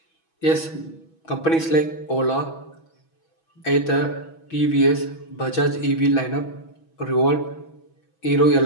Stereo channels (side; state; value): right; late; 6.2 ms